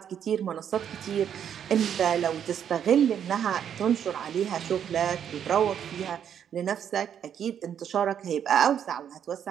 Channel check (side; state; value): left; quieter; 8.8 dB